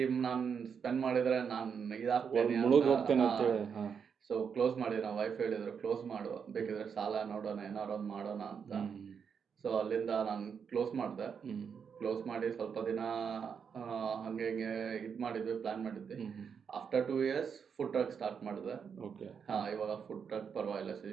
ನಾನ್ ಸ್ಪೆಂಡ್ ಮಾಡಿದ್ರೆ ನಾನ್ ಇದಾಗ್ತೇನೆ ಅಂತ ಹೇಳಿ. ಸೊ ಕ್ಲೋಸ್ ಮಾಡಿದ್ವಿ. ನಮ್ಮ ವೈಫ್ ಹೇಳಿದ್ರು, ಕ್ಲೋಸ್ ಮಾಡು, ಬೇಕಿದ್ರೆ ಸಾಲ ನೋಡೋಣ, ಏನಾರು ಒಂದು ಮಾಡೋಣ ಅಂತ. ಸೊ ಅಲ್ಲಿಂದ ನಾನು ಕ್ಲೋಸ್ ಮಾಡಿದೆ. ಕ್ಲೋಸ್ ಮಾಡಿ ಸ್ವಲ್ಪ ದಿನ ಹಂಗೆ ಇದು ಮಾಡಿದ್ವಿ, ಪ್ಲಾನ್ ಮಾಡಿದ್ವಿ. After 2 years food truck start ಮಾಡಿದೆ. ಇವಾಗ ಫುಡ್ ಟ್ರಕ್ ಪರವಾಗಿಲ್ಲ,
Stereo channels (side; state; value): left; quieter; 6.7 dB